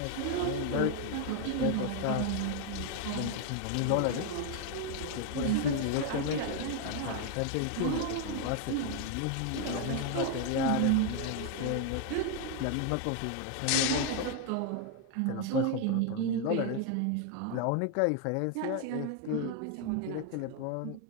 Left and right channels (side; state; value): both; different; correlation 0.01